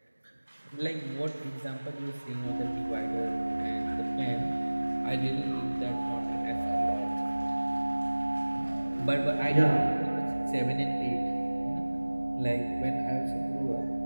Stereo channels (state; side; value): inverted; both; correlation -1.00